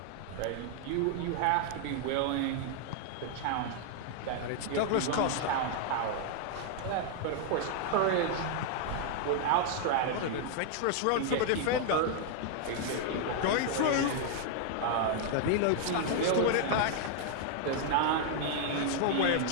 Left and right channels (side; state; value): both; different; correlation 0.00